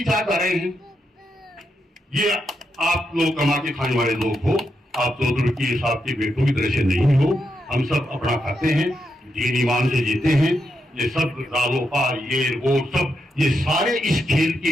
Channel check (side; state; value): both; normal; correlation 0.83